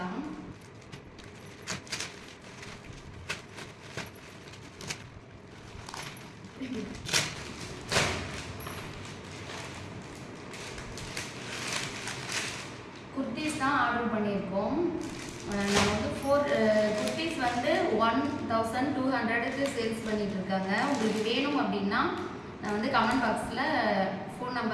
குர்த்திஸ் தான் ஆர்டர் பண்ணியிருக்கோம். நம்ம வந்து 4 குர்த்திஸ் வந்து 1200க்கு சேல்ஸ் பண்ணிட்டு இருக்காங்க. உங்களுக்கு வேணும் அப்படின்னா நான் வந்து கமெண்ட் பாக்ஸில் ஃபோன்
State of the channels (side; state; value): both; identical; correlation 1.00